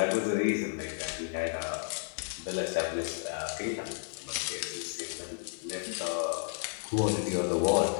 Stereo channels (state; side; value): silent; right; digital silence